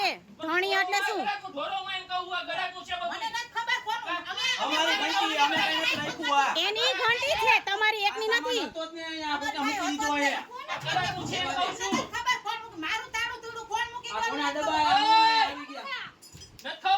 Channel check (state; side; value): identical; both; correlation 1.00